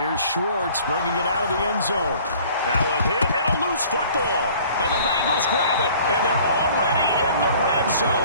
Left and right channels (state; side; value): inverted; both; correlation -0.51